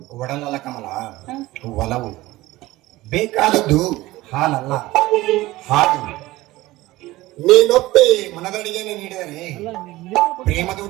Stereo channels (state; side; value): quieter; left; 18.3 dB